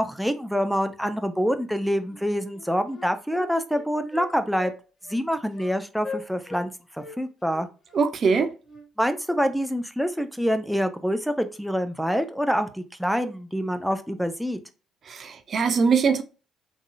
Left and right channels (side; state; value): both; normal; correlation 0.91